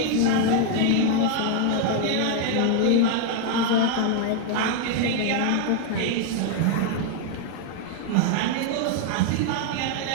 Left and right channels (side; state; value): both; different; correlation 0.00